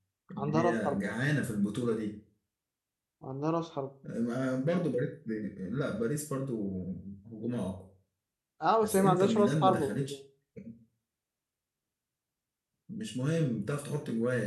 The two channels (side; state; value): both; identical; correlation 1.00